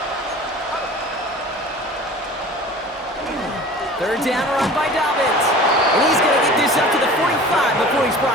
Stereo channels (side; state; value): both; normal; correlation 0.41